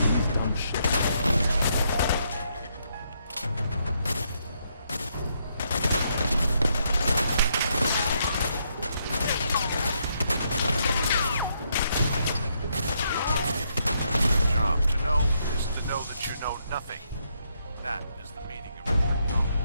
That is the meaning of recruit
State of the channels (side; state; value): both; inverted; correlation -0.76